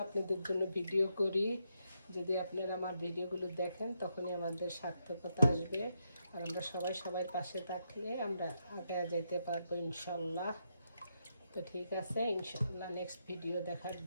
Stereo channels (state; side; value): inverted; both; correlation -0.81